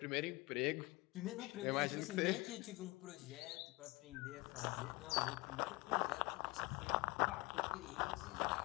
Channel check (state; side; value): quieter; right; 23.5 dB